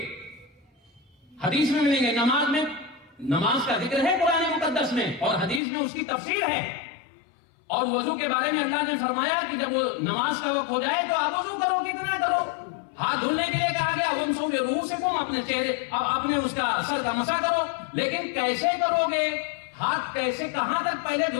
حدیث میں ملیں گے. نماز میں نماز کا ذکر ہے قرآن مقدس میں اور حدیث میں اس کی تفسیر ہے. اور وضو کے بارے میں اللہ نے فرمایا کہ جب وہ نماز کا وقت ہو جائے تو آپ وضو کرو، کتنا کرو. ہاتھ دھلنے کے لیے کہا گیا وَامْسَحُوا بِرُؤُوسِكُمْ، اپنے چہرے اپنے اس کا سر کا مسح کرو. لیکن کیسے کرو گے؟ ہاتھ کیسے، کہاں تک پہلے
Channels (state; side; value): drops out; right; at 5.6 s